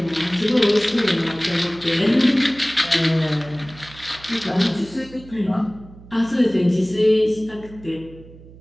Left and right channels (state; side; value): noise; right; hum, 20 dB below the sound